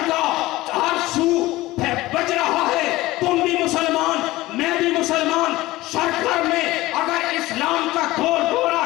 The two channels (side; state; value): right; quieter; 18.3 dB